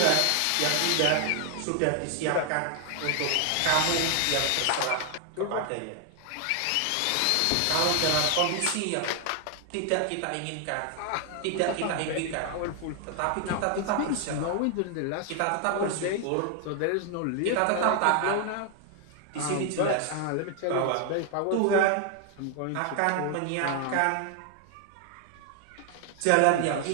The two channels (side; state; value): both; different; correlation 0.00